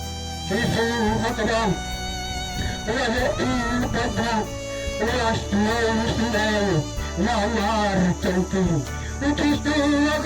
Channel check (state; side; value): identical; both; correlation 1.00